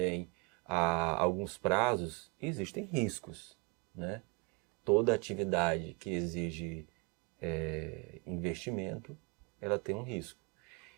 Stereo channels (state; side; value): quieter; left; 31.6 dB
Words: a alguns prazos, existem riscos, né? Toda atividade que exige investimento, ela tem um risco.